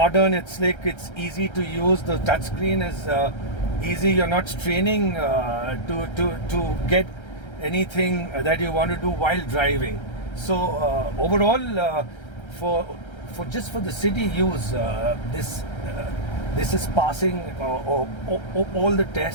It's slick. It's easy to use. The touchscreen is easy. You're not straining to get anything that you want to do while driving. So overall, for the city use, this is passing all the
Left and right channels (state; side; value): late; right; 1.3 ms